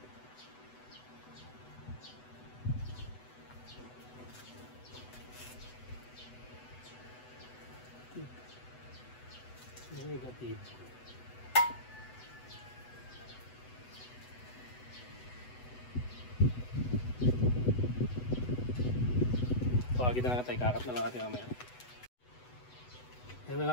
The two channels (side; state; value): right; late; 8.0 ms